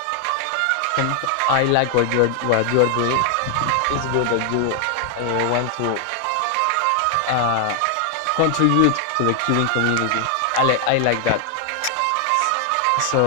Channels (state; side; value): different; both; correlation 0.00